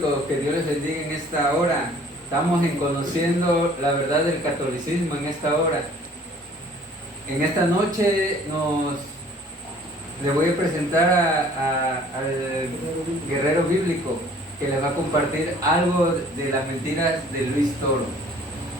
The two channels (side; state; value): both; normal; correlation 0.53